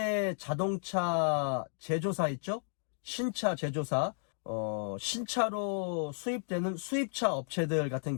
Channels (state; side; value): silent; right; digital silence